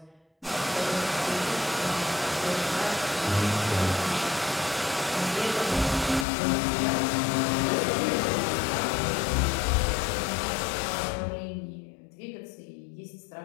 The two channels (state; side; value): drops out; right; at 6.2 s